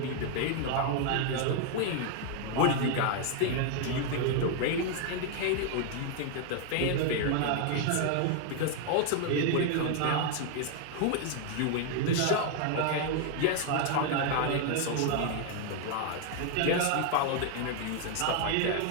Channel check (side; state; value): both; different; correlation 0.00